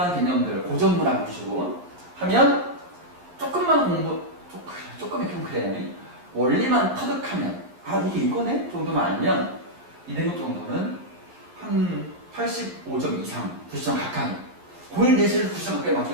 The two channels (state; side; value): late; left; 11 ms